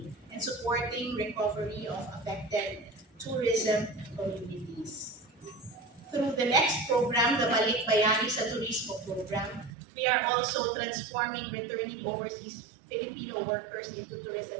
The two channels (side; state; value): left; drops out; at 9.7 s